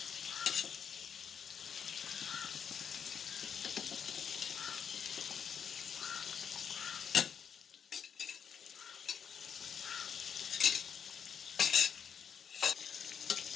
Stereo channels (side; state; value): right; quieter; 7.5 dB